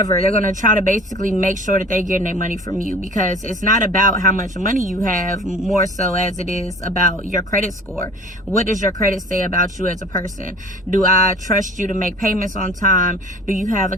They're going to try to basically make sure that they're getting their money from you, because it's not about how much money you have, more so as it is about your credit score. What does your credit say about you as a person? Do I trust you to make payments on time? Do you have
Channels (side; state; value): both; normal; correlation 0.44